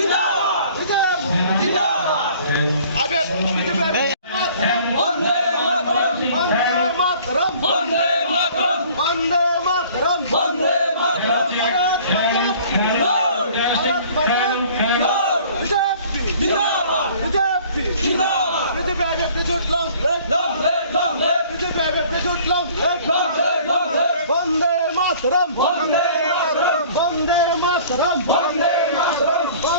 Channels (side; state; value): both; inverted; correlation -0.51